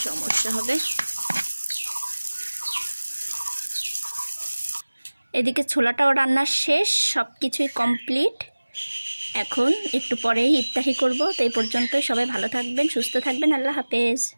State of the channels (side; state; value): both; inverted; correlation -1.00